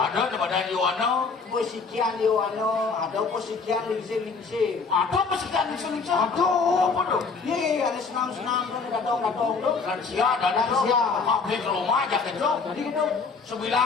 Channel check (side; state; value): right; quieter; 4.8 dB